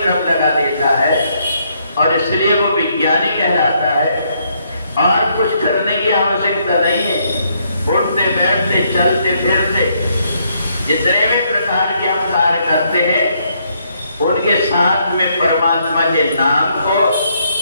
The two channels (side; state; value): both; inverted; correlation -0.72